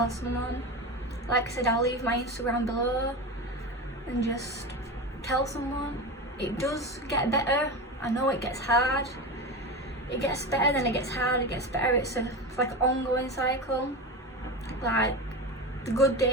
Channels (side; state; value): both; normal; correlation 0.23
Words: someone. Like I said, I'll leave my Instagram below, and just tell someone. it does get better. I know it gets hard. It gets better, then it gets hard, it gets better. It's like an ongoing cycle. Like, the good